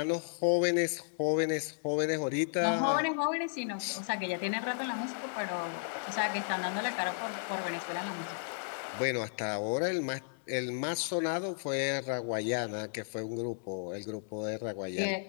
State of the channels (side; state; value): right; silent; digital silence